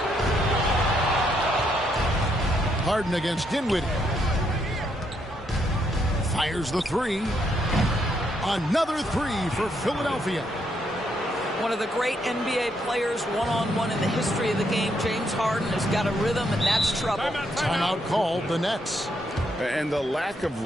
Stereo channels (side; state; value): both; normal; correlation 0.75